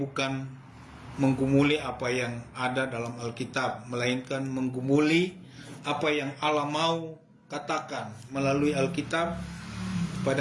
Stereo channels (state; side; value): identical; both; correlation 1.00